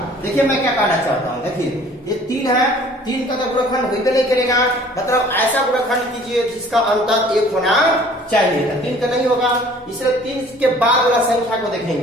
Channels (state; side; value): normal; both; correlation 0.52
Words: देखिए मैं क्या कहना चाहता हूँ, देखिए ये 3 है, 3 का तो गुणनखंड होइबे नहीं करेगा, मतलब ऐसा गुणनखंड कीजिए जिसका अंतर 1 होना चाहिए। 3 का नहीं होगा, इसलिए 3 के बाद वाला संख्या को